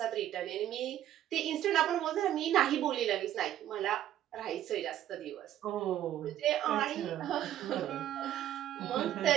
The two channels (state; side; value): quieter; left; 12.1 dB